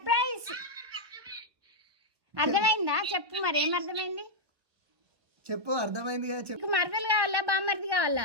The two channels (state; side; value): late; left; 1.0 ms